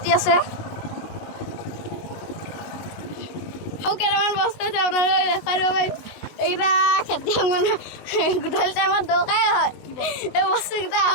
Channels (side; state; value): right; late; 19 ms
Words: আছে। কেইটামান বস্তু আছে আপোনালোকে দেখাই দিব পাৰিম। এইকেইটা খেতিয়ক মানুহ গধূলি টাইমত দৰকাৰেই হয় এই বস্তুকেইটা